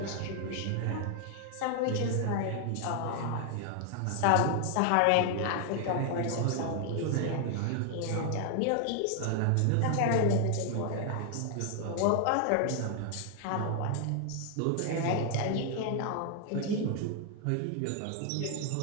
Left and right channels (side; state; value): both; different; correlation 0.00